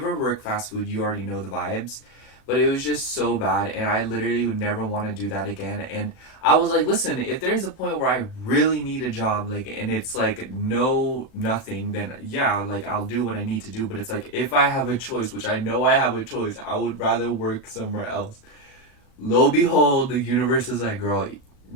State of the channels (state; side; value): late; right; 37 ms